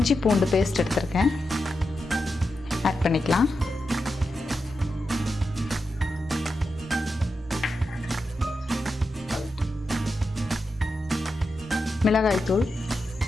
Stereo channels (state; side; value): normal; both; correlation 0.88